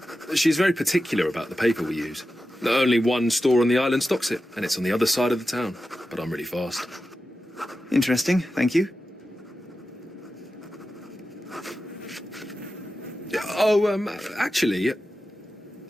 She's very particular about the paper we use. Only one store on the island stocks it, and it's on the other side of the town. But I'm really fast. Interesting, thank you. Actually,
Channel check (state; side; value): normal; both; correlation 0.92